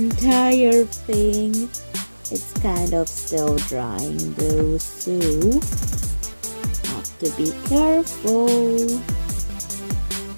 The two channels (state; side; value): inverted; both; correlation -1.00